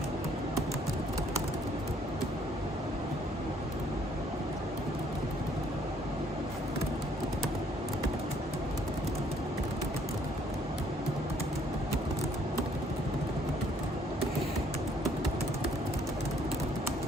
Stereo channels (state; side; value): normal; both; correlation 0.64